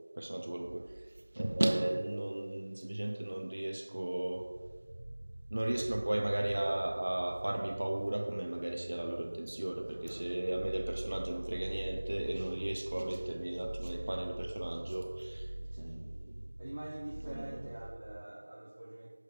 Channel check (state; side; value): inverted; both; correlation -1.00